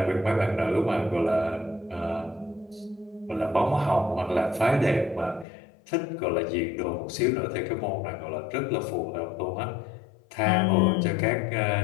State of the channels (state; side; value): drops out; right; at 5.5 s